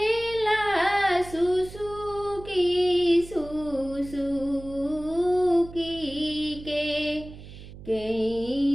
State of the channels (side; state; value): right; noise; hum, 16 dB below the sound